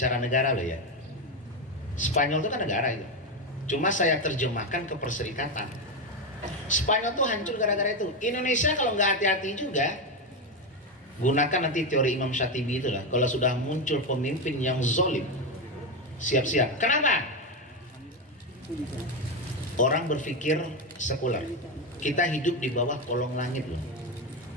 negara loh ya. Spanyol itu kan negara itu. Cuma saya terjemahkan ke perserikatan. Spanyol tuh hancur gara-gara itu. Indonesia kalau nggak hati-hati juga, gunakan nanti teori Imam Syatibi itulah. Kalau sudah muncul pemimpin yang zolim, siap-siap. Kenapa? Orang berpikir sekuler. Kita hidup di bawah kolong langit loh.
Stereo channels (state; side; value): normal; both; correlation 0.11